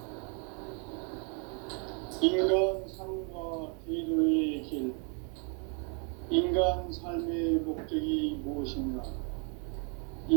인간 삶과 제도의 길. 인간 삶의 목적이 무엇인가?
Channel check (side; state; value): left; quieter; 37.6 dB